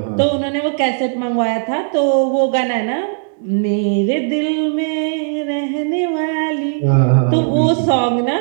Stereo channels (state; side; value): silent; left; digital silence